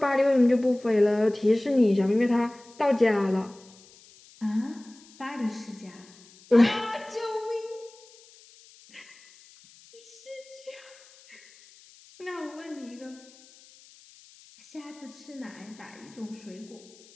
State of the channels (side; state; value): left; noise; hiss, 25 dB below the sound